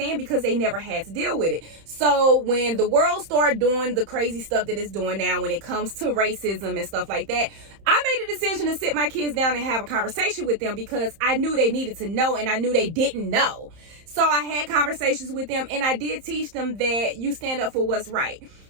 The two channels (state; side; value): late; left; 31 ms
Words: because they never had to deal with it. So when the world started doing the crazy stuff that it's doing now when it comes to racism and stuff like that, I made a decision to sit my kids down and have a conversation with them because I knew they needed to know and I knew they didn't know. So I had conversations with them and I did teach them that you stand up for what's right.